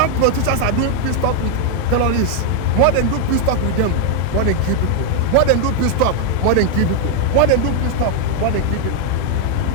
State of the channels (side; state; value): both; different; correlation 0.00